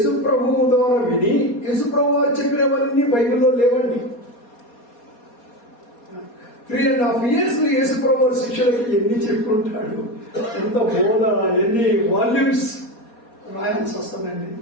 ప్రభువు ద్వారా విని, యేసు ప్రభు వారు చెప్పినవన్నీ బైబిల్లో లేవండి. 3.5 years యేసు ప్రభు శిష్యులకి ఎన్ని చెప్పుకుంటాడు, ఎంత బోధ, ఎన్ని వాల్యూమ్స్ రాయాల్సి వస్తుందండి.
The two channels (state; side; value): late; right; 4.2 ms